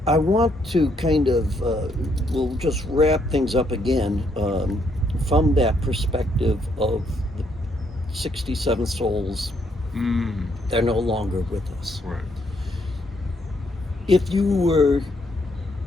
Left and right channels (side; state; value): both; normal; correlation 0.72